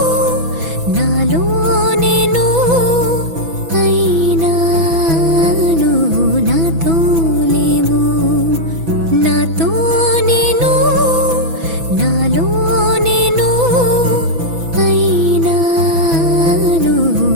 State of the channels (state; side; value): late; left; 6.0 ms